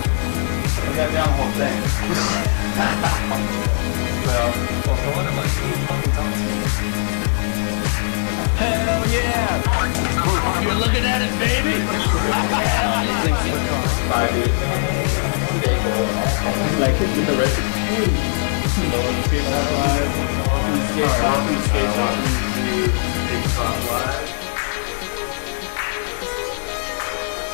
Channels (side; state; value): right; silent; digital silence